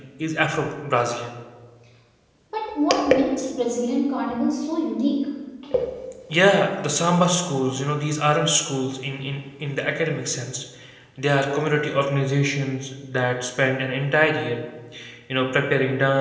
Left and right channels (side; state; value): both; identical; correlation 1.00